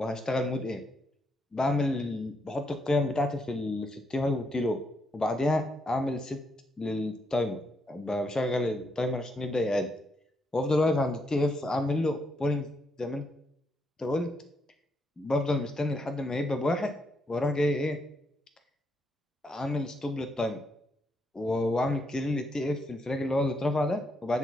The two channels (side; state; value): both; normal; correlation 0.78